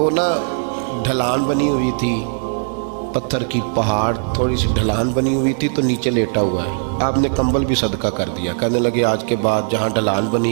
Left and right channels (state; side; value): silent; left; 56 dB below the other